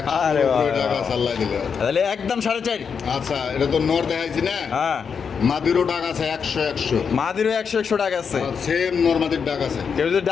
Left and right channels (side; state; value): right; quieter; 6.4 dB